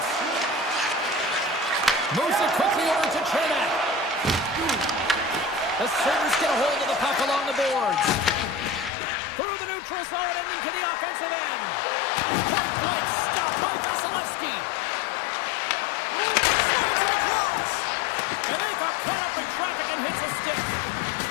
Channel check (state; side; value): drops out; right; at 8.9 s